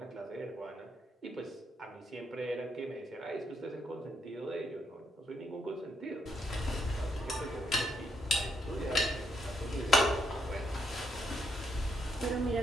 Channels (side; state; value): both; normal; correlation 0.76